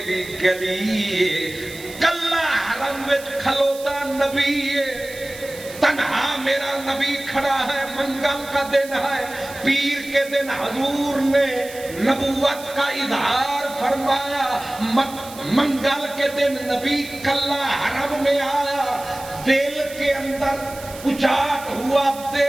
دی گلی، کلا حرم وچ کھلوتا نبی، تنہا میرا نبی کھڑا ہے، منگل کا دن ہے، پیر کے دن حضور نے نبوت کا اظہار فرمایا، منگل کے دن نبی کلا حرم میں آیا، دل کے اندر اچاٹ ہوا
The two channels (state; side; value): noise; right; hiss, 16 dB below the sound